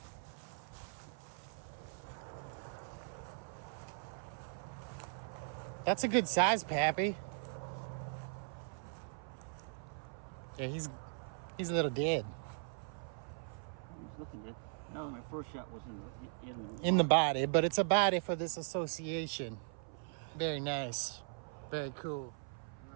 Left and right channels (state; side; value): silent; left; 51 dB below the other